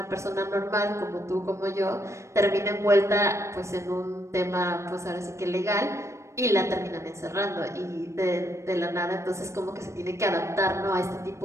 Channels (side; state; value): left; late; 0.14 ms